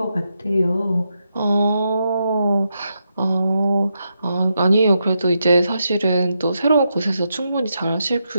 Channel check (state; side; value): inverted; both; correlation -0.84